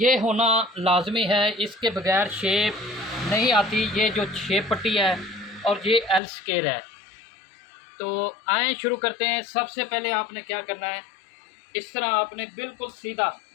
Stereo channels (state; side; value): drops out; right; at 6.2 s